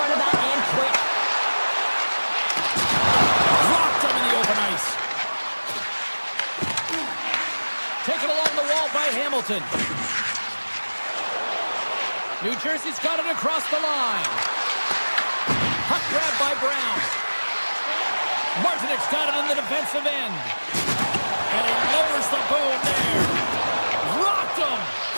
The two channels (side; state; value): both; inverted; correlation -1.00